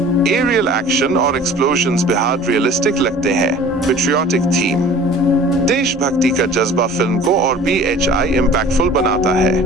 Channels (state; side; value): normal; both; correlation 0.45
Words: Aerial action और एक्सप्लोजन्स बेहद रियलिस्टिक लगते हैं। Patriotic theme. देशभक्ति का जज्बा फिल्म को और BHI इम्पैक्टफुल बनाता है।